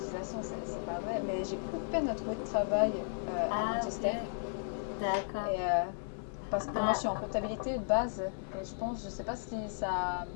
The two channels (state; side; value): silent; right; digital silence